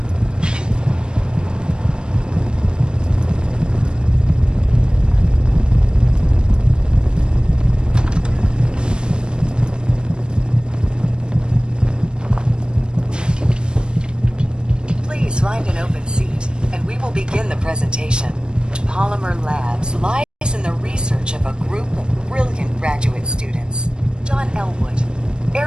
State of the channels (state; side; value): late; left; 0.052 ms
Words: Find an open seat, and we will begin the presentation. Polymer Labs lies in the research of a group of brilliant graduate students. John Elwood,